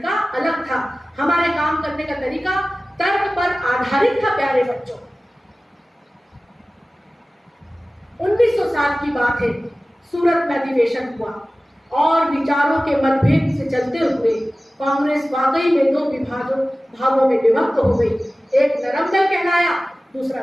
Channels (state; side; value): normal; both; correlation 0.97